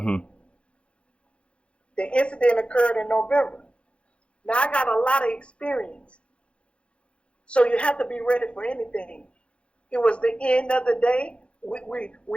The incident occurred in November. Now I got a lot of experience. So you have to be ready for anything. It was the end of the day.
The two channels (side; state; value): right; late; 0.059 ms